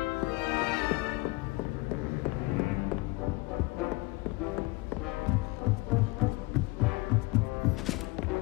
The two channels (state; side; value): quieter; right; 23.1 dB